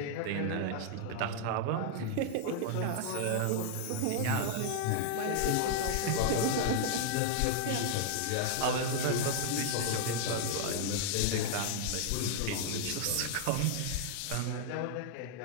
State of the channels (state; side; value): different; both; correlation 0.00